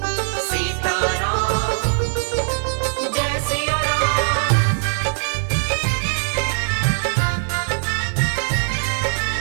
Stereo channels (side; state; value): left; silent; digital silence